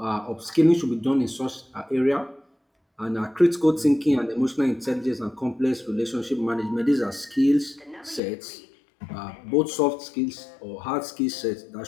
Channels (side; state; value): right; drops out; at 8.2 s